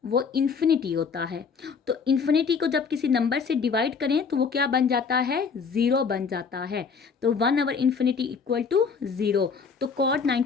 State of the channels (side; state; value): right; quieter; 5.7 dB